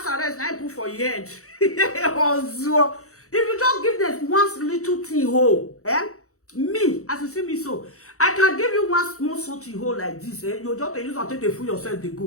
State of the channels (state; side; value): late; right; 0.65 ms